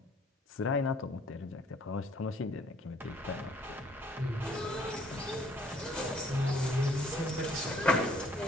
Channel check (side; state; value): both; normal; correlation 0.60